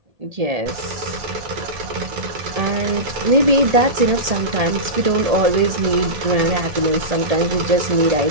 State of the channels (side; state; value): left; late; 1.7 ms